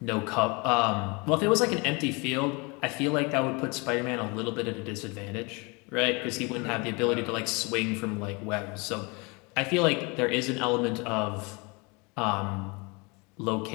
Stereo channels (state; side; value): quieter; right; 28.8 dB